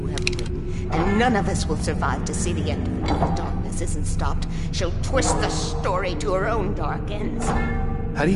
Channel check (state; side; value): identical; both; correlation 1.00